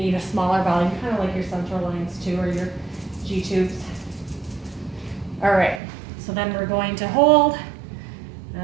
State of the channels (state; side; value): drops out; left; at 5.8 s